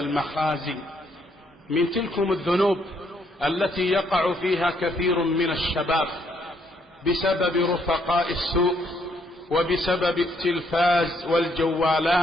من تلكم الذنوب التي يقع فيها كثير من الشباب بسبب رفقاء السوء وبسبب التلفاز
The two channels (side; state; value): both; normal; correlation 0.71